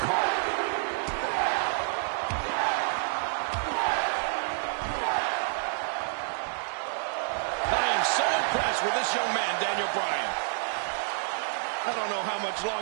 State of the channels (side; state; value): left; silent; digital silence